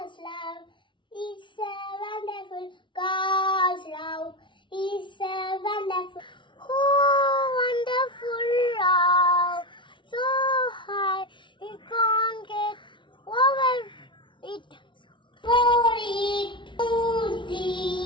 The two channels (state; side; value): late; right; 0.24 ms